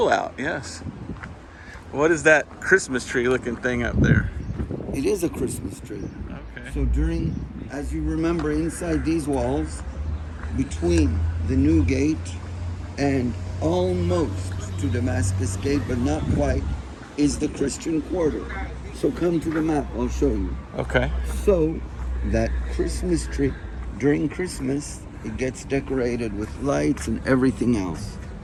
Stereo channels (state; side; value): identical; both; correlation 1.00